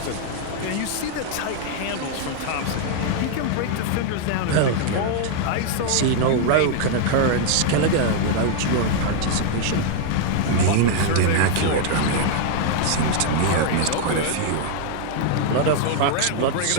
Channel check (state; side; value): different; both; correlation 0.00